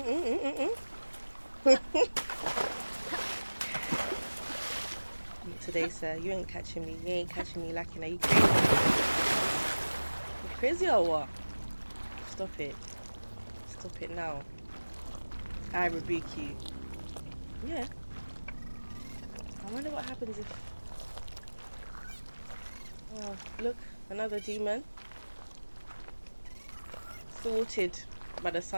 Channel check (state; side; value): inverted; both; correlation -1.00